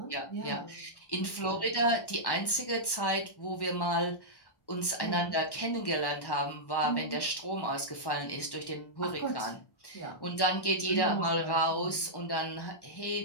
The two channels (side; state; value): right; late; 1.1 ms